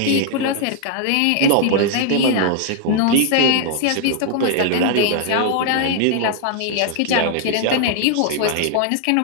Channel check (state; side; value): different; both; correlation 0.00